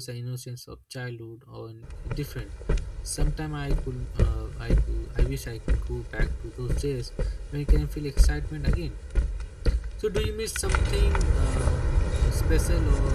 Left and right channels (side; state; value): both; identical; correlation 1.00